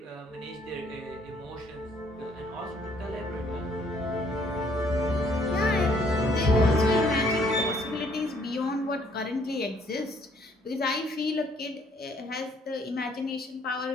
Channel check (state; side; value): normal; both; correlation 0.64